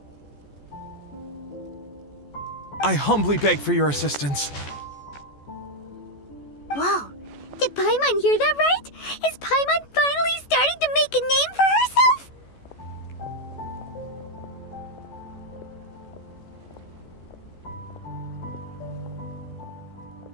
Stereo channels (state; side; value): late; right; 14 ms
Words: I humbly beg for your assistance. Whoa, did Paimon hear that right? Is Paimon finally starting to make a name for herself?